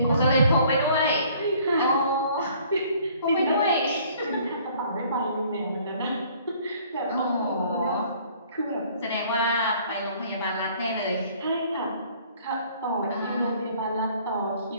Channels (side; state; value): both; inverted; correlation -0.57